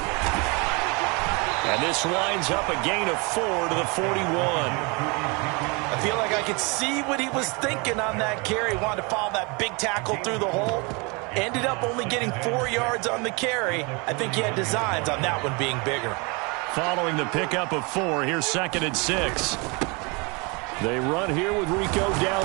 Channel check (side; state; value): left; quieter; 29.5 dB